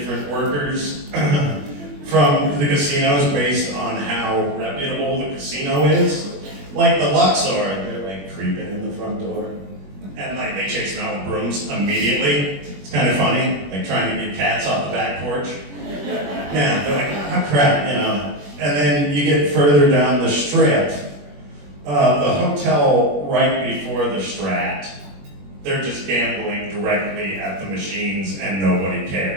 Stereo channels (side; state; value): left; late; 21 ms